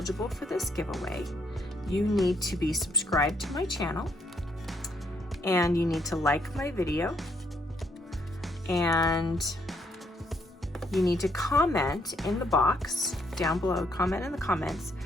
for this giveaway, you need to be subscribed to my channel, and you need to like my video, and you need to comment in the box down below, comment in the comments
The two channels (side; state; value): both; normal; correlation 0.72